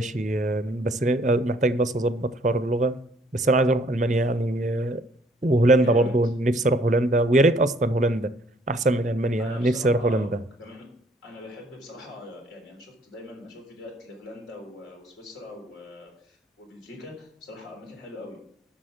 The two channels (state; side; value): normal; both; correlation 0.62